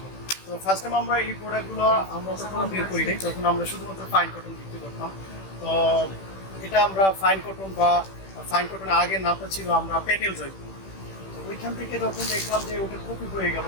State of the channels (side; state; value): right; late; 16 ms